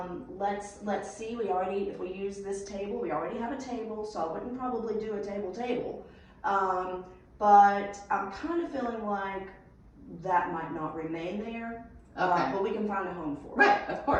Let's see. If we use this table, we already have a table, so I wouldn't probably do a table. But I'm kind of feeling like that might not remain there. Okay. But we can find a home for it. Right, of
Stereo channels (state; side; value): identical; both; correlation 1.00